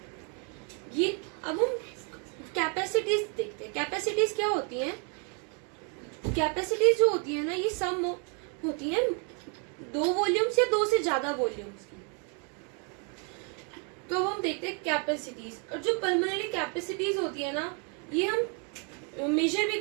ये अब हम कैपेसिटीज देखते हैं। कैपेसिटीज क्या होती हैं, कैपेसिटीज जो होती है ना ये सम होती है दो वॉल्यूम्स या दो से ज्यादा वॉल्यूम्स की। तो अब हम देखते हैं कैपेसिटीज। और जो पल्मोनरी कैपेसिटीज होती है ना ये हम मेजर भी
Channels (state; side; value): quieter; left; 38.1 dB